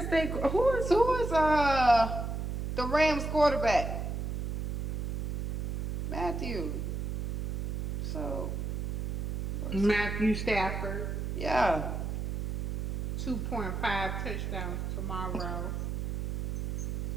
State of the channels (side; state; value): right; noise; hum, 2 dB below the sound